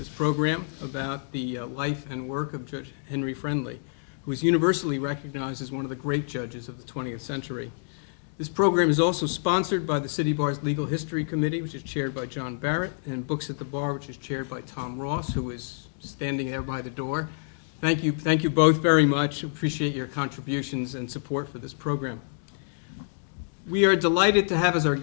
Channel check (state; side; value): silent; right; digital silence